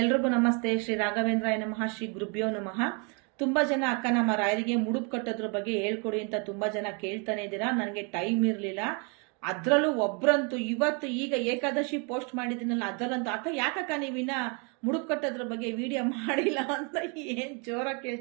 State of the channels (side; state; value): left; quieter; 34.6 dB